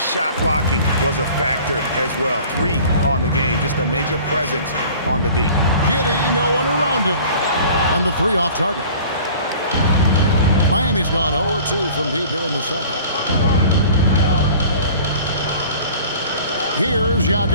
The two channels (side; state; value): both; inverted; correlation -0.46